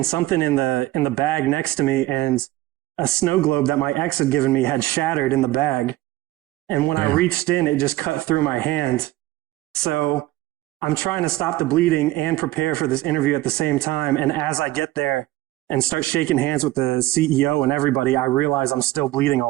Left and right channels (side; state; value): left; quieter; 16.8 dB